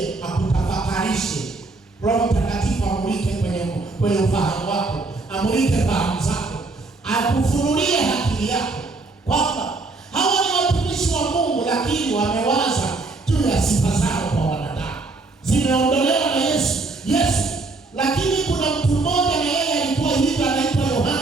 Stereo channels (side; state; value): left; quieter; 3.5 dB